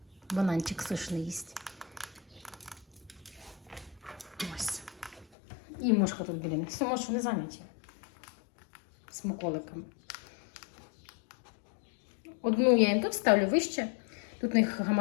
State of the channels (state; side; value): drops out; right; at 5.2 s